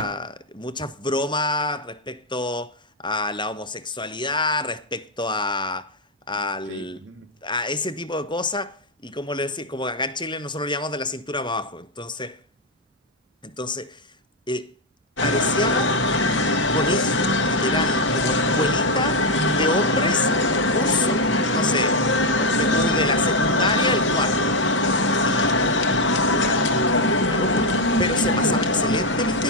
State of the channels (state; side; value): normal; both; correlation 0.03